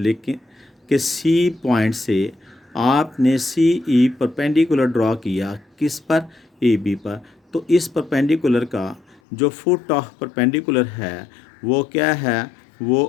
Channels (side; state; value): right; drops out; at 9.2 s